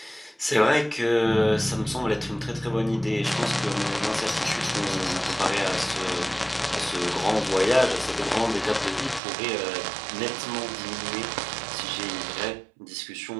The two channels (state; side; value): drops out; left; at 9.2 s